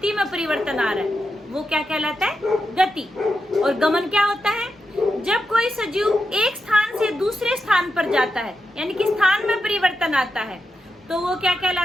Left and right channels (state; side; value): normal; both; correlation 0.87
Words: में परिवर्तन आ रहा है, वो क्या कहलाता है? गति। और गमन क्या होता है? जब कोई सजीव एक स्थान से दूसरे स्थान पर जाता है, यानी कि स्थान में परिवर्तन आता है, तो वो क्या